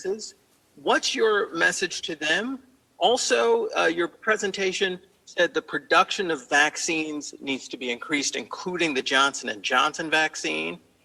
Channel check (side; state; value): both; identical; correlation 1.00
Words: What's your message to them? Also, your presentation said the production of vaccines needs to be increased, including the Johnson & Johnson vaccine.